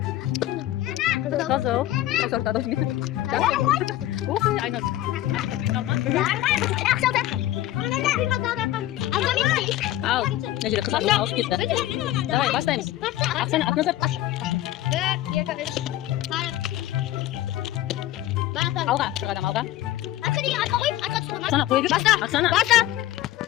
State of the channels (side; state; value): right; quieter; 14.3 dB